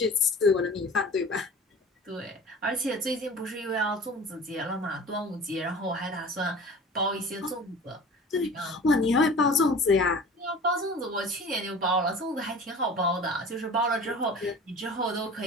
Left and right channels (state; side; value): normal; both; correlation 0.41